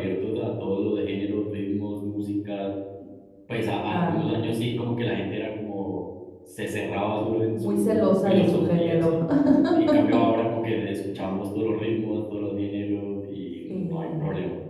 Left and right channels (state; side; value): identical; both; correlation 1.00